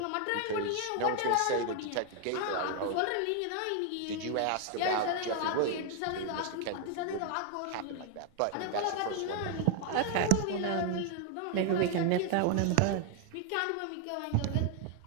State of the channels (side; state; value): both; different; correlation 0.00